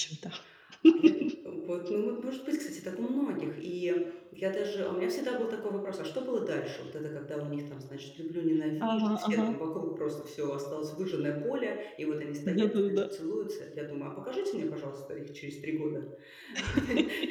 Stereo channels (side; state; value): both; identical; correlation 1.00